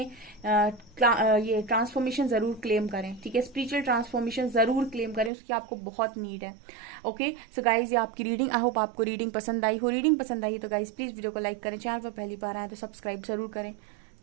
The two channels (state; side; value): drops out; left; at 5.3 s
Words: ये ट्रांसफॉर्मेशन जरूर क्लेम करें, ठीक है। स्पिरिचुअल ट्रांसफॉर्मेशन जरूर क्लेम करें, उसकी आपको बहुत नीड है। ओके सो गाइज, ये आपकी रीडिंग, आई होप आपको रीडिंग पसंद आई हो। रीडिंग पसंद आई तो गाइज प्लीज वीडियो को लाइक करें, चैनल पर पहली बार आए तो सब्सक्राइब जरूर करें।